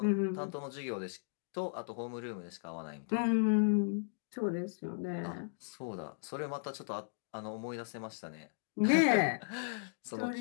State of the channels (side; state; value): right; silent; digital silence